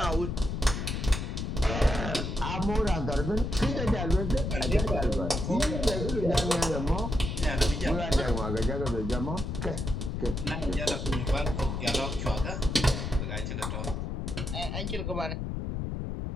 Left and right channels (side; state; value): left; noise; rumble, 3 dB below the sound